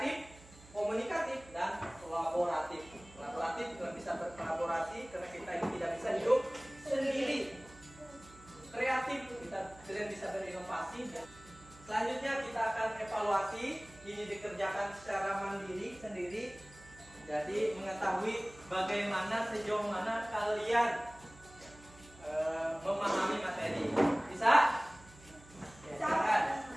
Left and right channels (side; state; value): right; noise; hum, 22 dB below the sound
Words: komunikatif, dan kolaboratif. Kolaboratif kalian bisa berkolaborasi karena kita ini tidak bisa hidup sendiri. Kreatif kalian bisa berinovasi. Selanjutnya kita akan evaluasi. Ini dikerjakan secara mandiri sendiri. Jadi mengetahui bagaimana sejauh mana kalian memahami materi. Bisa? Ya, silakan.